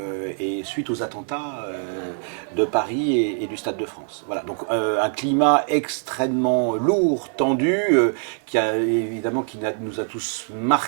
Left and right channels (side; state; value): left; silent; 60 dB below the other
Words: et suite aux attentats de Paris et du Stade de France. Voilà, donc un climat extrêmement lourd, tendu, nous a tous